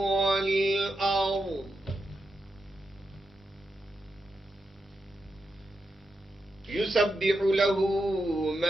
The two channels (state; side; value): normal; both; correlation 0.86